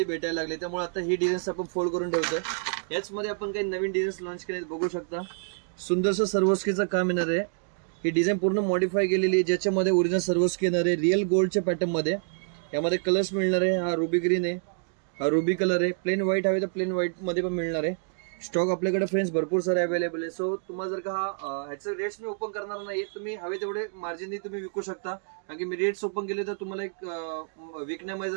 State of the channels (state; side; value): silent; left; digital silence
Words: भेटायला लागले. त्यामुळे आता ही डिझाईन्स आपण फोल्ड करून ठेवतोय. याचमध्ये आपण काही नवीन डिझाईन्स लॉन्च केले बघू शकता. सुंदरसं सर्वस्कीचं काम येणार आहे. ही डिझाईन पूर्ण मॉडिफाय केलेली आहे, ज्याच्यामध्ये ओरिजिनल सर्वस्की येणार आहे रिअल गोल्डच्या पॅटर्न मध्ये. यामध्ये कलर्स मिळणार आहे. हा रुबी ग्रीन आहे, हा रुबी कलर आहे. प्लेन व्हाईट हवे तर प्लेन व्हाईट मध्ये पण मिळणार आहे. स्टॉक आपल्याकडे फ्रेंड्स भरपूर सारे अवेलेबल आहे. सो तुम्हाला जर का ह्याचे रेट्स मी ओपन करणार नाही, तुम्ही हवे तेवढे मार्जिननी तुम्ही विकू शकता. कारण की मी रेट्स ओपन केले तर तुम्हाला एक विकण्यामध्ये